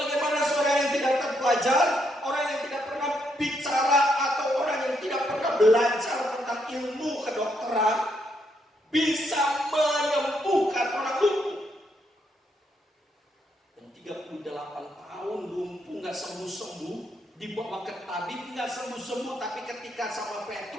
seorang yang tidak terpelajar, orang yang tidak pernah bicara atau orang yang tidak pernah belajar tentang ilmu kedokteran bisa menyembuhkan orang lumpuh. Yang 38 tahun lumpuh nggak sembuh-sembuh, dibawa ke tabib nggak sembuh-sembuh, tapi ketika sama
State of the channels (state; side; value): normal; both; correlation 0.76